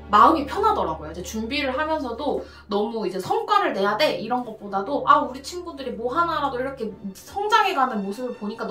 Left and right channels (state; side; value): identical; both; correlation 1.00